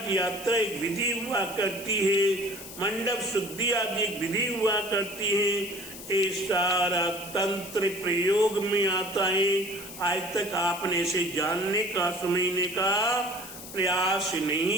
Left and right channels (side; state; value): left; noise; hiss, 13 dB below the sound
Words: यात्रा एक विधि हुआ करती है, मंडप शुद्धि आदि एक विधि हुआ करती है। ये सारा तंत्र प्रयोग में आता है। आज तक आपने इसे जानने का, समझने का प्रयास